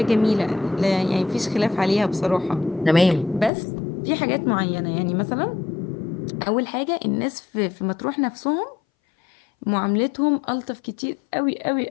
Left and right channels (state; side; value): drops out; right; at 3.5 s